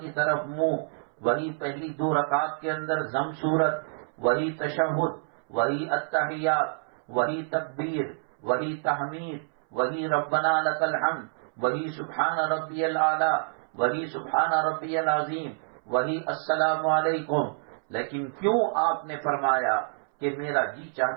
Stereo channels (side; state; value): left; silent; 60 dB below the other